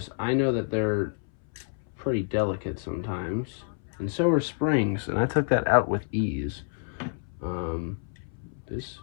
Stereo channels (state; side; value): silent; right; 59 dB below the other